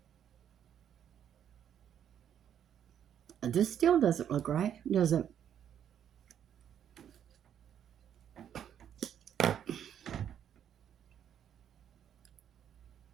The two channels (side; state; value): left; quieter; 9.4 dB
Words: This still doesn't look right, does it?